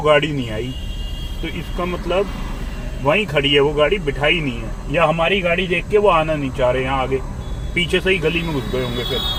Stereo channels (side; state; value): both; identical; correlation 1.00